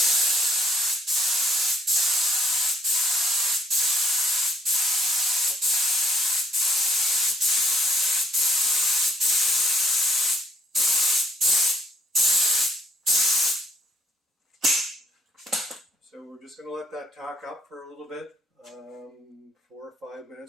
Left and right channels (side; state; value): both; normal; correlation 0.67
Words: So we're just going to let that tack up for a little bit, 4 or 5